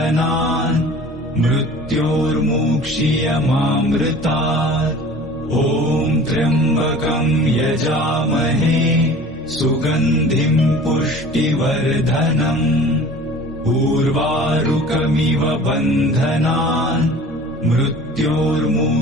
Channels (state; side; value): normal; both; correlation 0.43